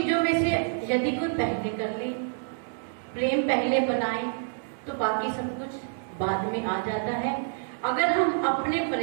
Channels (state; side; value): silent; left; digital silence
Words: में से यदि कोई पहले कर ले, प्रेम पहले बनाए, तो बाकी सब कुछ बाद में आ जाता है। अगर हम अपने